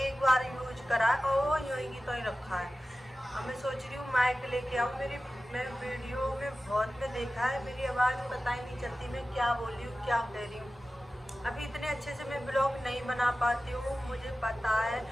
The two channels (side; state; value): both; normal; correlation 0.95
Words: बार यूज करा और वो यूँ की तो ही रखा है। अब मैं सोच रही हूँ माइक लेके आऊँ। मैं वीडियो में बहुत में देखा है, मेरी आवाज़ पता ही नहीं चलती मैं क्या बोल रही हूँ, क्या कह रही हूँ। अभी इतने अच्छे से मैं ब्लॉग नहीं बना पाती हूँ, मुझे पता है,